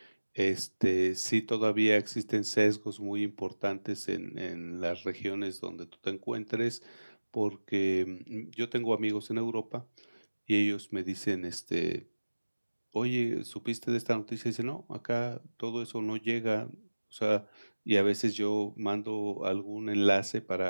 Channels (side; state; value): both; inverted; correlation -1.00